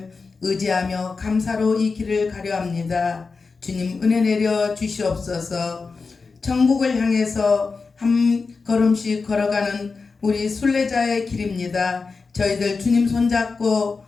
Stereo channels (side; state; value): right; quieter; 4.5 dB